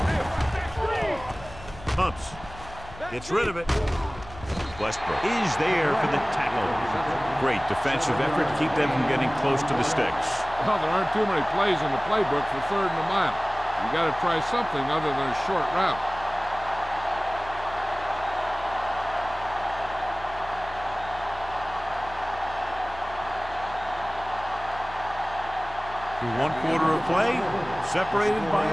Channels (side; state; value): left; noise; hum, 17 dB below the sound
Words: Pumps. Gets rid of it. Westbrook is there for the tackle. Great defensive effort to keep them from getting close to the sticks. Well, there aren't too many plays in the playbook for 3rd and a mile. You got to try something other than a short route. Through 1 quarter of play, separated by